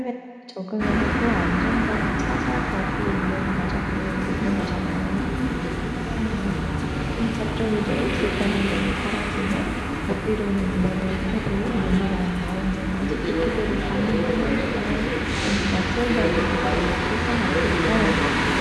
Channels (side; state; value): both; identical; correlation 1.00